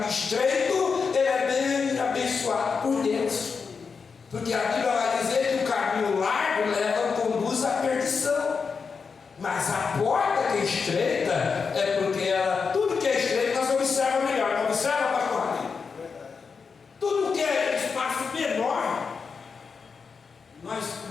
estreito, ele é bem abençoado por Deus. Porque a Bíblia vai dizer que o caminho largo conduz à perdição. Mas a porta que é estreita é porque tudo que é estreito nós observamos melhor. Não observa, pastor? Tudo que é espaço menor, nós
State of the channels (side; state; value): right; quieter; 5.4 dB